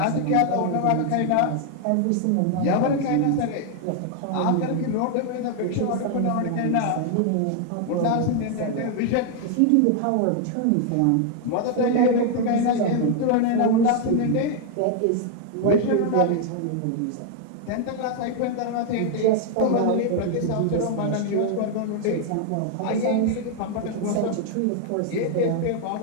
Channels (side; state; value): both; different; correlation 0.00